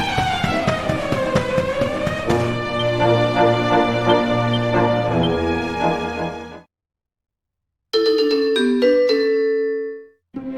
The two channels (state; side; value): identical; both; correlation 1.00